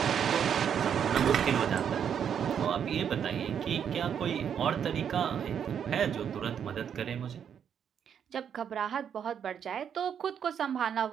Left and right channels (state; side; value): quieter; left; 8.2 dB